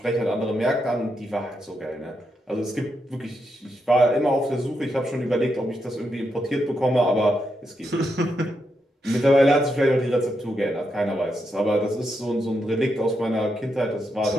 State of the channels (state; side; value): normal; both; correlation 0.83